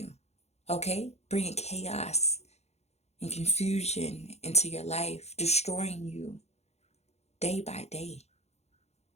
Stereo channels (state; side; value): late; right; 0.31 ms